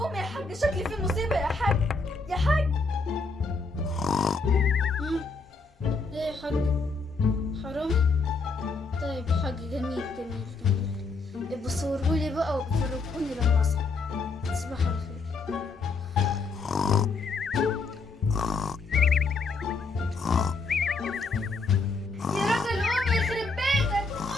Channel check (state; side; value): quieter; right; 4.0 dB